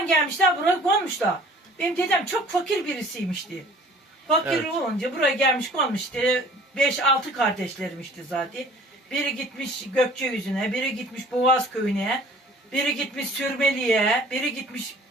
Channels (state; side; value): normal; both; correlation 0.51